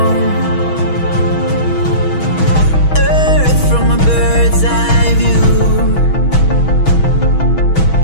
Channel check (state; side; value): late; right; 6.2 ms